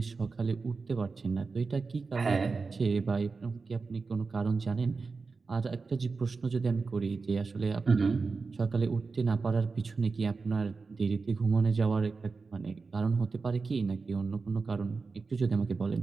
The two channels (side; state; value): left; quieter; 4.4 dB